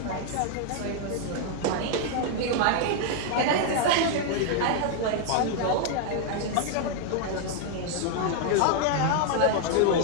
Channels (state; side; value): different; both; correlation 0.00